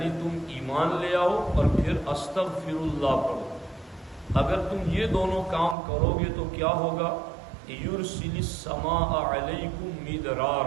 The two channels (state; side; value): drops out; left; at 5.8 s